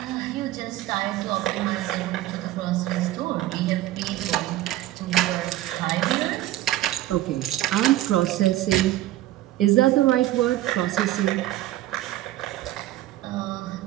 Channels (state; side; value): quieter; left; 15.0 dB